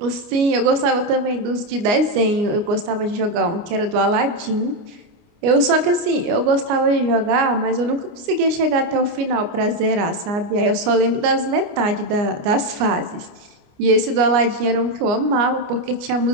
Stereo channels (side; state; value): left; late; 29 ms